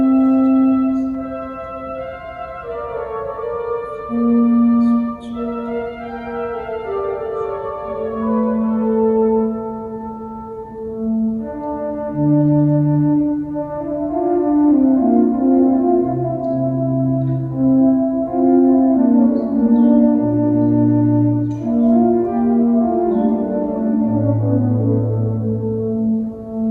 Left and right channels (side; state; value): both; identical; correlation 1.00